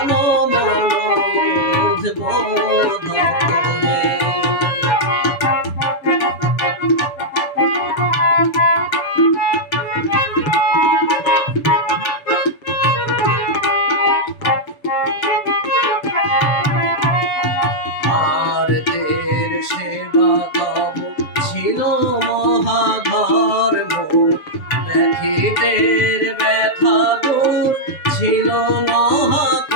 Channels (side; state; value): right; late; 6.9 ms